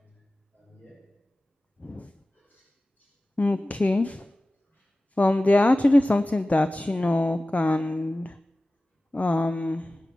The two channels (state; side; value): normal; both; correlation 0.96